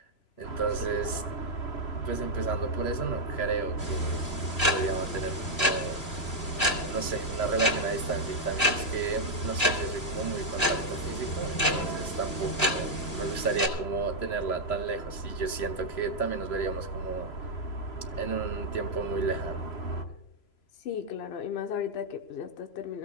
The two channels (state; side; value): late; right; 3.0 ms